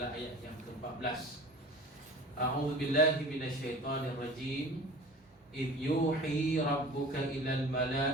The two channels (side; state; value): both; normal; correlation 0.41